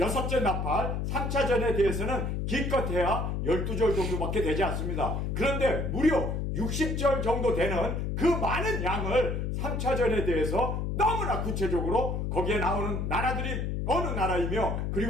나팔 3차전에 대해서는 기껏해야 12절 정도밖에 되지 않습니다. 그런데 무려 60절 정도 되는 그 많은 양을 3차전에 대해서 너무나 구체적으로 거기에 나오는 나라들이 어느 나라이며,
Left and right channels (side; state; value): left; noise; hum, 1 dB below the sound